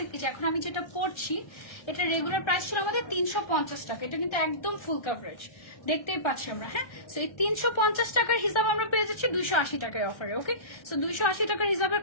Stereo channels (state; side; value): late; right; 1.3 ms